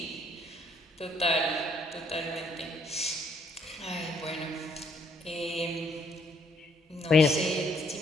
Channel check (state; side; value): normal; both; correlation 0.67